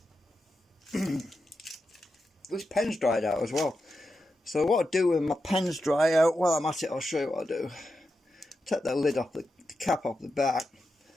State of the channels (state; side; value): normal; both; correlation 0.88